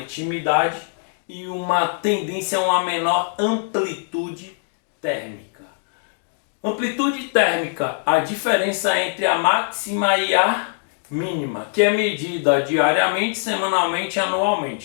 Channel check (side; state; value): right; silent; 62 dB below the other